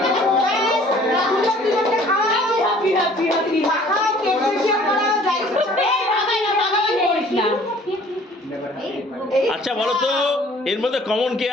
আচ্ছা বলো তো এর মধ্যে কমন কে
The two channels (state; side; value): normal; both; correlation 0.53